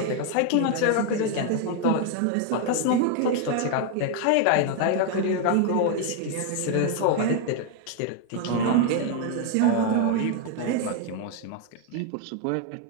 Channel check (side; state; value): both; different; correlation 0.01